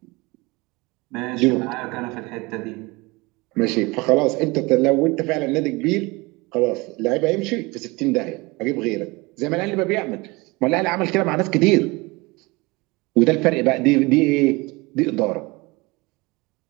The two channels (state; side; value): quieter; left; 24.3 dB